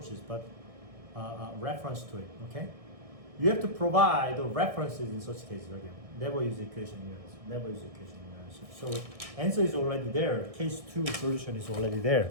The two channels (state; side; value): late; left; 1.6 ms